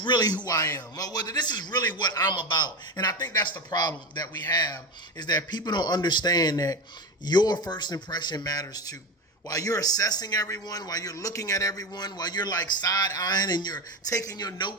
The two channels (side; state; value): both; normal; correlation 0.19